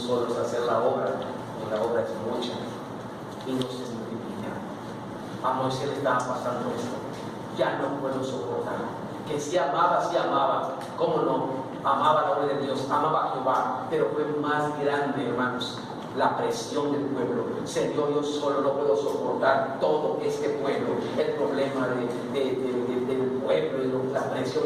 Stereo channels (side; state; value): both; identical; correlation 1.00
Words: hacer la obra, y la obra es mucha y no se multiplica. A Moisés le estaba pasando esto. Ya no puedo soportar. Que sí amaba, ¿cómo no? Amaba la obra de Dios, amaba a Jehová, pero fue más grande, hermanos, la presión del pueblo. Señor, yo solo no puedo soportar todo este pueblo, el problema del pueblo y la presión